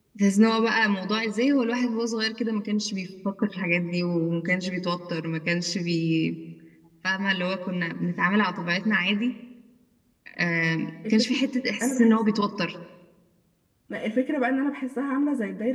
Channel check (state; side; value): identical; both; correlation 1.00